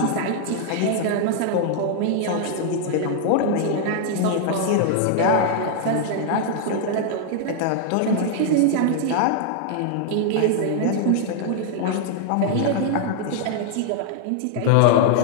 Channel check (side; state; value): both; different; correlation 0.00